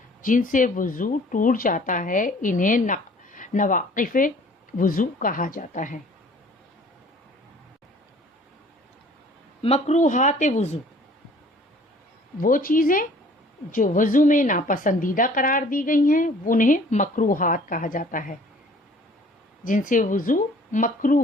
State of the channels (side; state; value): both; normal; correlation 0.53